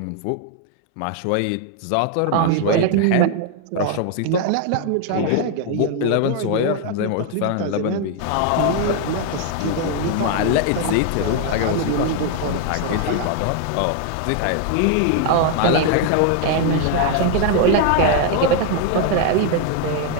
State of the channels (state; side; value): different; both; correlation 0.00